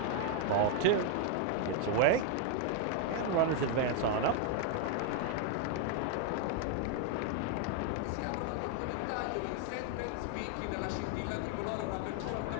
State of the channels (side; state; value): both; different; correlation 0.01